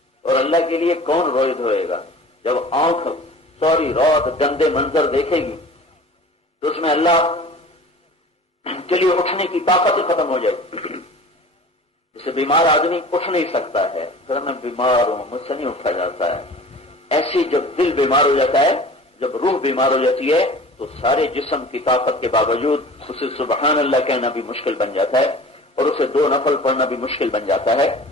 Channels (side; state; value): both; normal; correlation 0.41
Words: اور اللہ کے لیے کون روئے دھوئے گا؟ جب آنکھ سوری رات گندے منظر دیکھے گی تو اس میں اللہ کے لیے اٹھنے کی طاقت ختم ہو جائے گی. جسے بیمار آدمی اٹھ نہیں سکتا ہے، پھر میں بیمار ہوں مجھ سے نہیں اٹھا جاتا ہے، ایسی جب دل بیمار ہو جاتا ہے، جب روح بیمار ہو جاتی ہے تو سارے جسم کی طاقت کے باوجود اسے سبحان اللہ کہنا بھی مشکل بن جاتا ہے اور اسے 2 نفل پڑھنا بھی مشکل بن جاتا ہے.